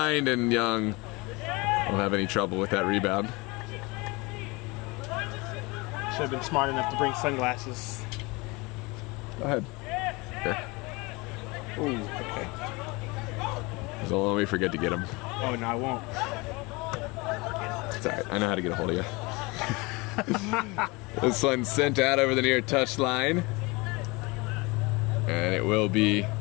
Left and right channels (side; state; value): right; quieter; 25.4 dB